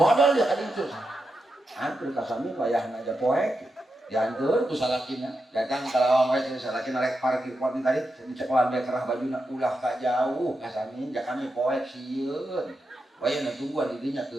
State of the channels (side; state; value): both; normal; correlation 0.87